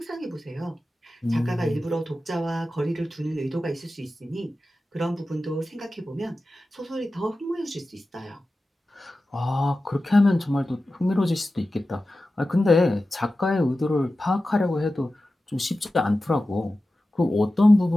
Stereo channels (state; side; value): normal; both; correlation 0.94